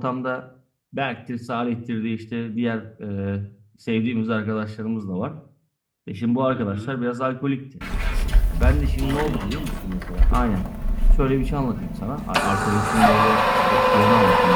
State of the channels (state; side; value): identical; both; correlation 1.00